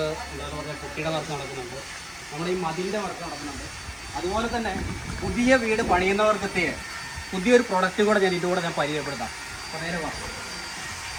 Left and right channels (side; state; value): right; noise; hiss, 29 dB below the sound